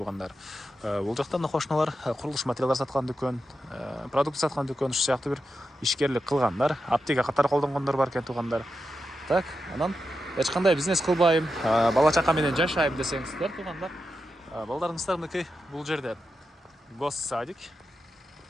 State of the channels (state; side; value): normal; both; correlation 0.89